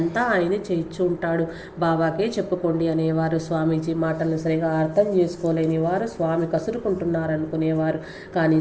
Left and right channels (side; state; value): both; identical; correlation 1.00